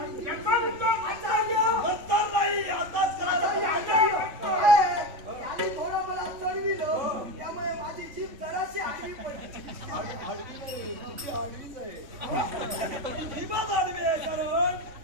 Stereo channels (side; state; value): left; late; 3.5 ms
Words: नंतर नाही आताच थोडं मला चढविलं त्यामुळे माझी जीभ जराशी आडवी पडली. आडवी नाही तुझी आडवीच आहे. जीभच आडवी आहे कारण